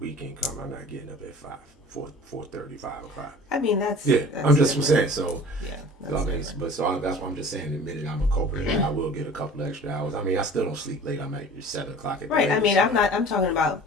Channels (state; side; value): normal; both; correlation 0.43